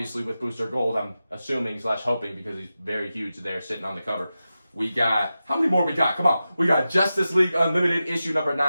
with Booster Gold, I'm assuming / hoping, because he's very huge there sitting on the cover. We got, how many more we got? Come on. We got Justice League Unlimited issue number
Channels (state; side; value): inverted; both; correlation -0.93